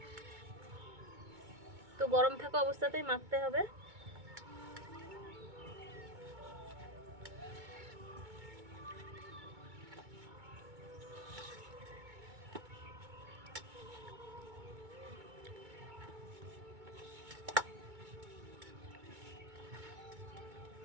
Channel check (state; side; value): late; left; 2.2 ms